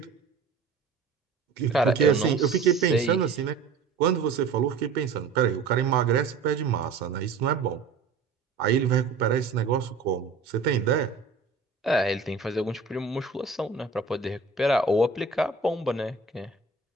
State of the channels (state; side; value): quieter; left; 4.8 dB